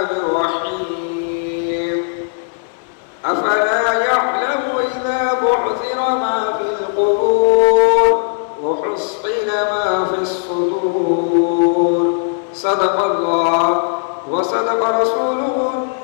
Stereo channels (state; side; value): silent; right; 63 dB below the other